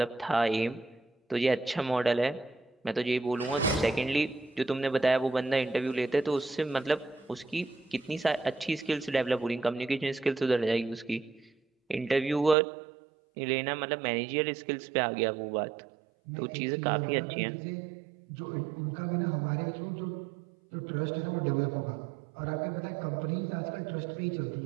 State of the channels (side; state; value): left; drops out; at 12.6 s